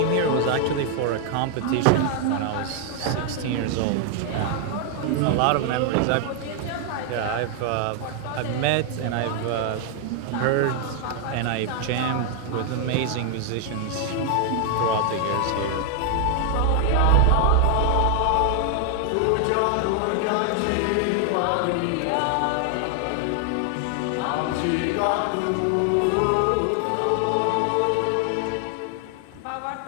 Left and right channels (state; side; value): different; both; correlation 0.00